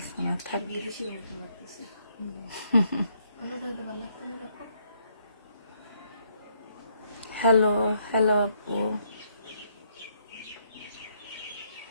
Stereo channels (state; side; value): inverted; both; correlation -0.71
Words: না, থাক। বিদেশির মতো লাগতেছে। অন্যটা হইলে ভালো লাগতো না এরকম। হ্যালো হ্যালো আপু,